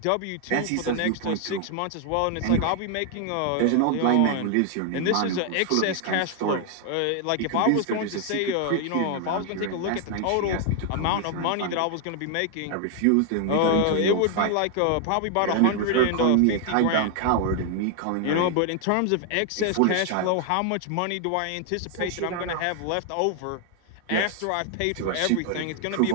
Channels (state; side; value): different; both; correlation 0.00